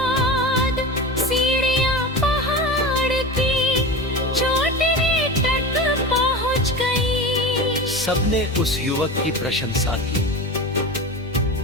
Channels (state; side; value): normal; both; correlation 0.27